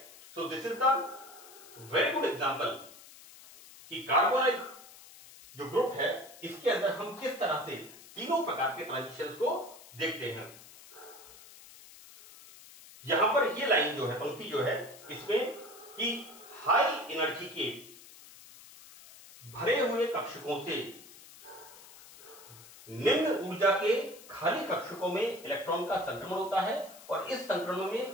So this is the very good example कि कार्बोनाइल जो ग्रुप है इसके अंदर हम किस तरह से तीनों प्रकार के ट्रांजिशंस को देखते हैं। यहां पर ये लाइन जो है, पंक्ति जो है, इसमें कि हाई एनर्जी के भरे हुए कक्षकों से निम्न ऊर्जा के खाली कक्षकों में इलेक्ट्रॉन का संक्रमण होता है और इस संक्रमण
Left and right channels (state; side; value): noise; left; hiss, 19 dB below the sound